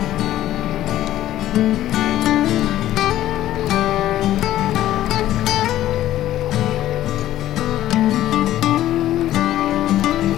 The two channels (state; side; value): quieter; right; 13.5 dB